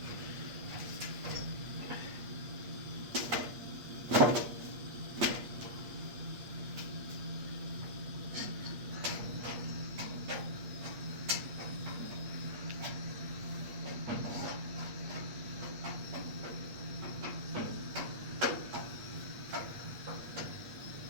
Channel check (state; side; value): late; left; 8.4 ms